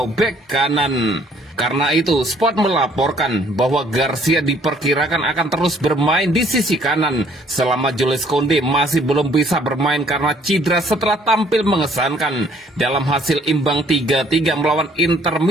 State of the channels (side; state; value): both; normal; correlation 0.61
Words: bek kanan. Karena itu, Sport melaporkan bahwa Garcia diperkirakan akan terus bermain di sisi kanan selama Jules Koundé masih belum bisa bermain karena cedera setelah tampil mengesankan dalam hasil imbang 3-3 melawan Inter